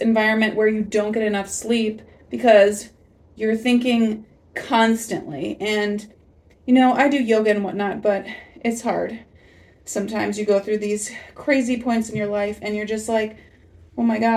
where you don't get enough sleep because you're thinking constantly. And I do yoga and whatnot, but it's hard. Sometimes you go through these crazy points in your life and you're just like, oh my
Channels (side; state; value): both; identical; correlation 1.00